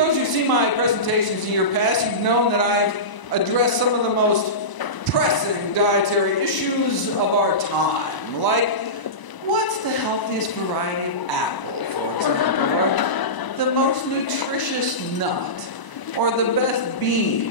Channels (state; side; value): late; right; 1.0 ms